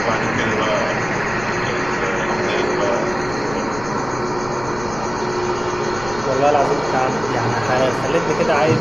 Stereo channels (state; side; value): noise; left; rumble, 15 dB below the sound